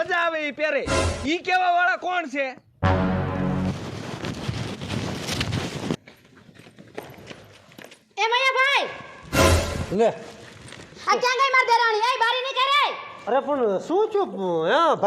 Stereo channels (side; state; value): both; identical; correlation 1.00